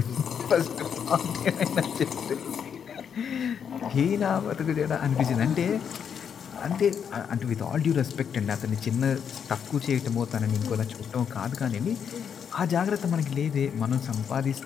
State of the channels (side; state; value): right; quieter; 7.6 dB